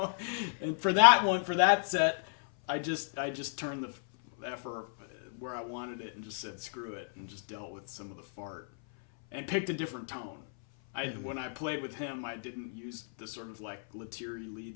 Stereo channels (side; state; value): right; silent; 55 dB below the other